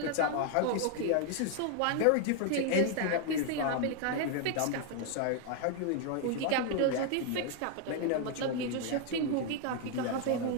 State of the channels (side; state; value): both; different; correlation 0.00